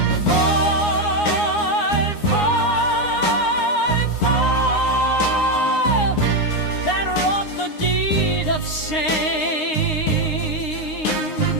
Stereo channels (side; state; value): right; late; 9.7 ms